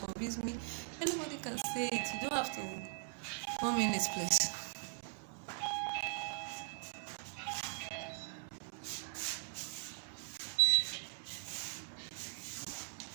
me, anybody can say it. You don't have to come in this place.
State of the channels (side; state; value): left; silent; 51 dB below the other